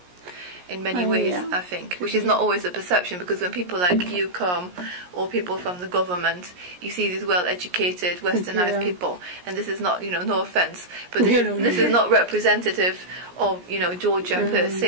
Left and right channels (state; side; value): late; left; 17 ms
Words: in many ways, I think, which is not always a perception, because when people like you come, or people from the government, you see these well-educated, westernised people, and this is not, no offence, but this is not representative of, Georgia per